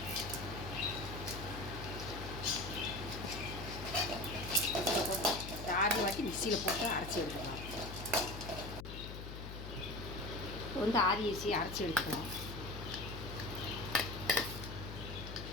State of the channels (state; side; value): noise; left; hum, 9 dB below the sound